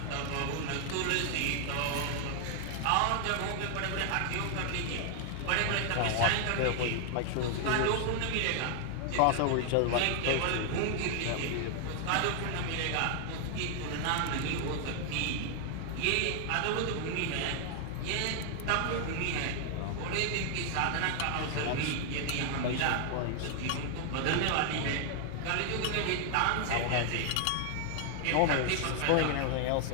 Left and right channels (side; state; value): both; different; correlation 0.00